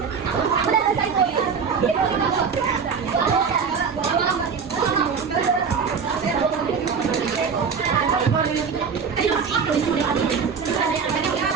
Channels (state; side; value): quieter; left; 6.0 dB